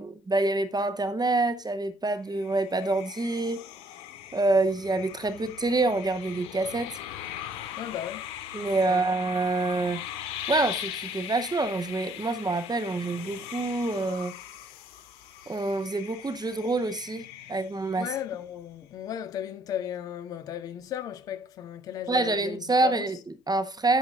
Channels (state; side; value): normal; both; correlation 0.64